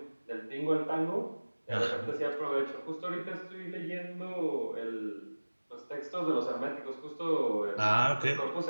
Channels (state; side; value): inverted; both; correlation -1.00